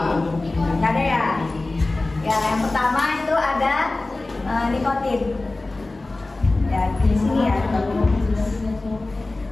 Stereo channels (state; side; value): quieter; right; 3.1 dB